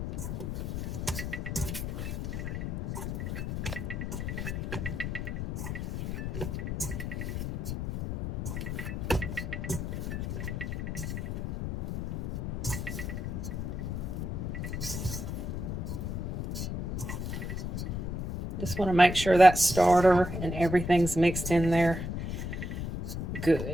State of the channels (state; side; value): noise; left; rumble, 4 dB below the sound